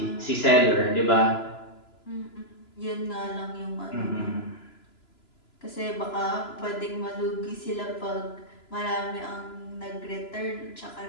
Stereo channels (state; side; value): late; right; 3.0 ms